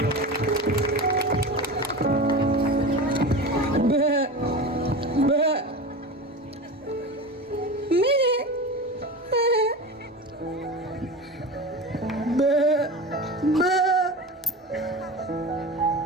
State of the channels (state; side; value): normal; both; correlation 0.29